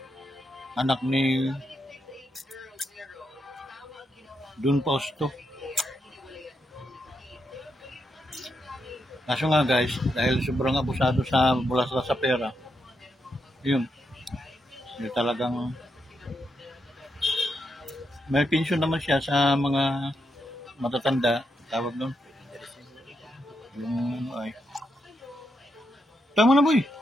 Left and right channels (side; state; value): both; normal; correlation 0.82